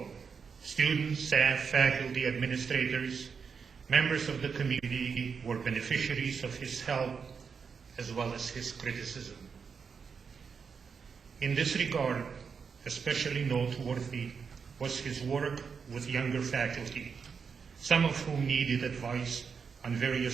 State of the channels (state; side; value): quieter; left; 6.0 dB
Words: students, staff, faculty, administrators, members of the community were beneficiaries of his help as well as his criticism. In this regard, especially noteworthy was his work with younger faculty, some of whom needed advice on